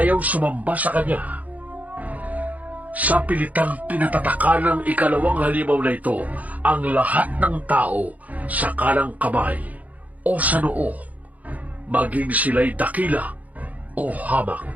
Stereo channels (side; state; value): left; late; 0.075 ms